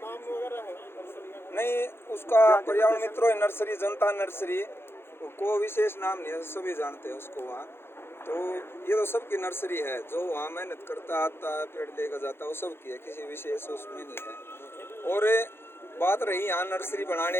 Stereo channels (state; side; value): late; right; 0.11 ms